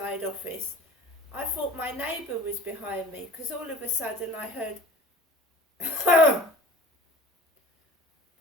office, I thought my neighbour was behind me, because all of a sudden I heard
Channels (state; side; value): normal; both; correlation 0.45